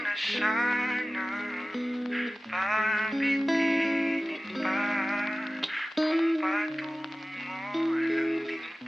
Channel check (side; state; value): both; normal; correlation 0.97